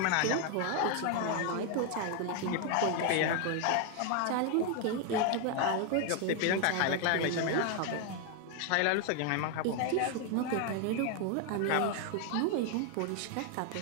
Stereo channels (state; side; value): different; both; correlation 0.01